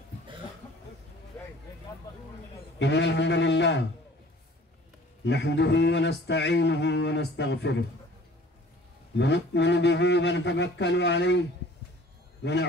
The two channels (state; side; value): normal; both; correlation 0.50